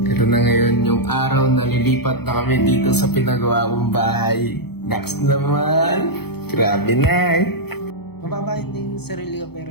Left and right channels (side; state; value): right; late; 0.97 ms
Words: ito na ngayon yung araw na lilipat na kami dito sa pinagawa kong bahay. Naks naman! Grabe na eh! Mababa hindi yung sarili ko